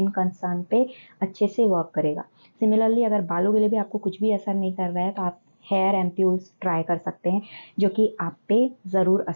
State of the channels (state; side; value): inverted; both; correlation -1.00